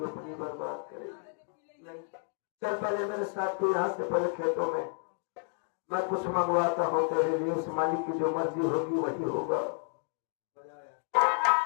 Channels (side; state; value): right; silent; 57 dB below the other